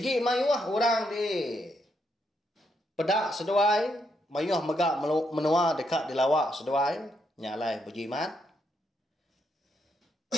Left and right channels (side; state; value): both; normal; correlation 0.78